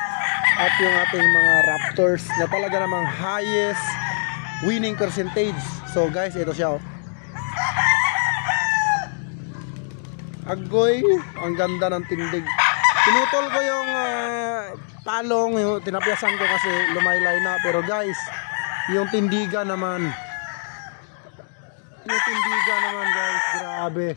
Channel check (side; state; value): right; silent; digital silence